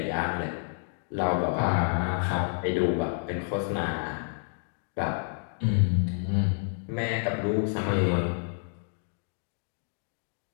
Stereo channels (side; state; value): right; silent; digital silence